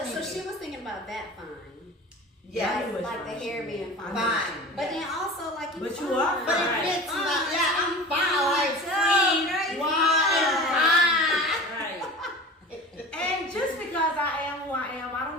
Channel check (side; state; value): both; normal; correlation 0.36